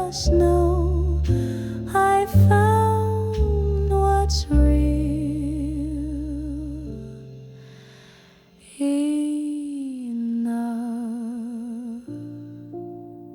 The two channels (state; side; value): identical; both; correlation 1.00